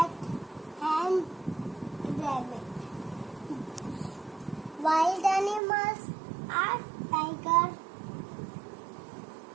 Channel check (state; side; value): drops out; left; at 5.6 s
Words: and rabbit. Wild animals are tiger,